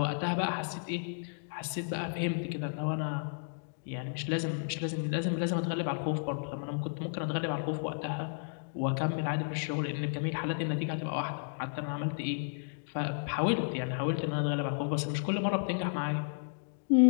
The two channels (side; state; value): right; silent; digital silence